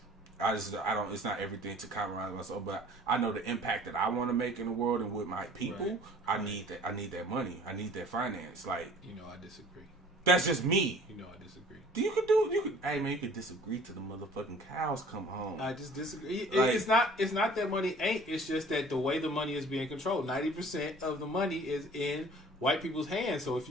It's not everything to compromise myself, but I know the impact that I want to make in the world and with my people. Right. I need that money. I need that finance. Like, you know, I disagree. That's just me. You know, I disagree. Hey man, you could disagree till the motherfucking cows come home. I just disagree. It's not that money ain't. It's just that the way the money is being controlled, 90% of the money is in white people's hands. So if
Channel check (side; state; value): both; normal; correlation 0.49